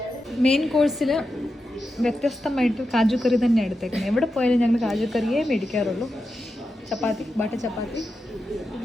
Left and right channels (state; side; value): normal; both; correlation 0.89